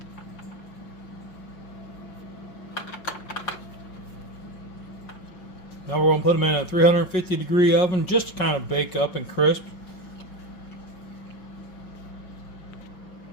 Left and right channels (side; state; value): right; late; 5.5 ms